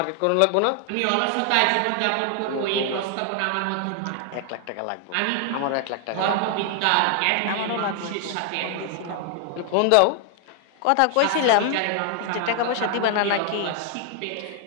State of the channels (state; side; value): different; both; correlation 0.00